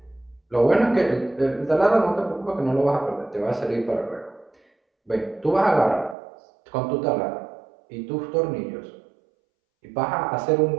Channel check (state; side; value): drops out; left; at 6.2 s